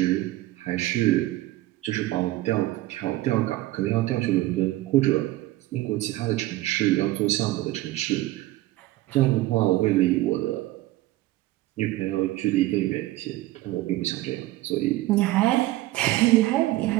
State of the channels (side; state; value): left; quieter; 17.0 dB